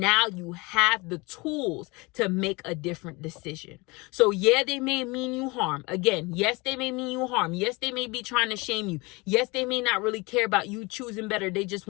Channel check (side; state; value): right; quieter; 25.5 dB